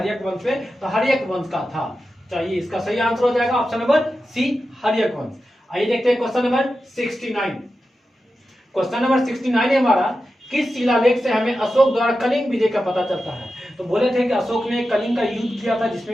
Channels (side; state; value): both; normal; correlation 0.91